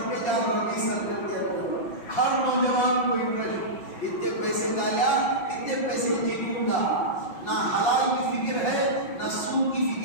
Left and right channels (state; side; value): late; right; 5.7 ms